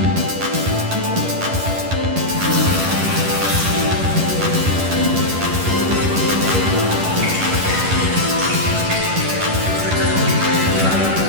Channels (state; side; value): late; left; 11 ms